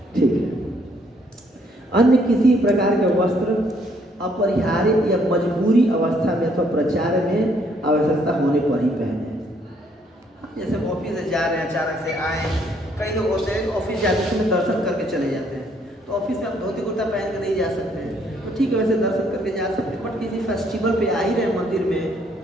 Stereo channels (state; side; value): normal; both; correlation 0.67